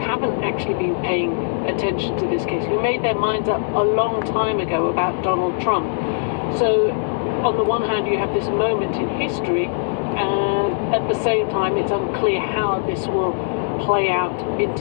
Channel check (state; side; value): silent; right; 65 dB below the other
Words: actually been paying attention to this case, who made their minds up a long time ago about Donald Trump. So on the one hand you have this moment in history, and at the same time it's unclear how this will play out in